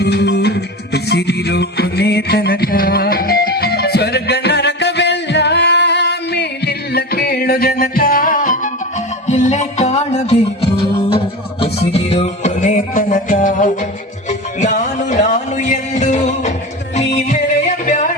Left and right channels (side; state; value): both; normal; correlation 0.27